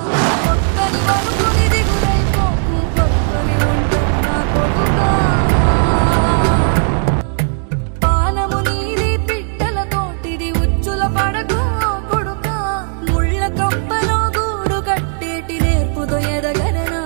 ఒక్కని వనుకుని దిగులైపోకు పక్కని ఉంటున్నా కొడుకా పానము నీది పిట్టల తోటిది ఉచ్చుల పడకు కొడుకా ముళ్ళ కంపలో గూడు కట్టేటి నేర్పుతో ఎదగర నా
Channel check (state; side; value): silent; left; 56 dB below the other